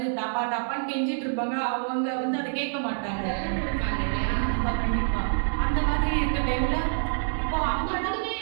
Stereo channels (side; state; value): left; silent; 60 dB below the other